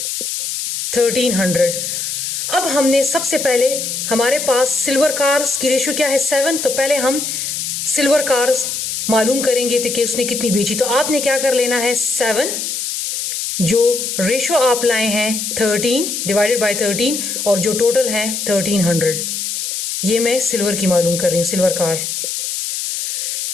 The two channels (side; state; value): left; noise; hiss, 3 dB below the sound